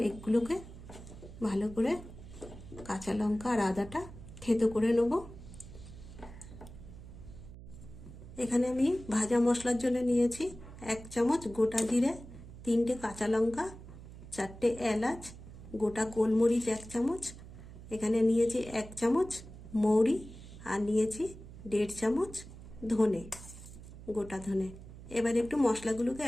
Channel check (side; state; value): right; noise; hum, 15 dB below the sound